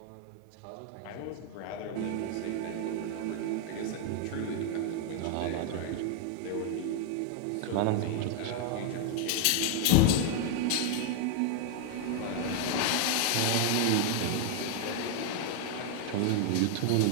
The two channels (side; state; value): both; different; correlation 0.00